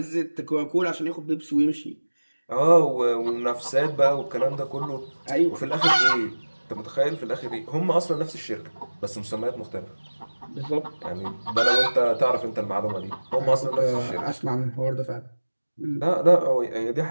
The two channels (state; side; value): inverted; both; correlation -1.00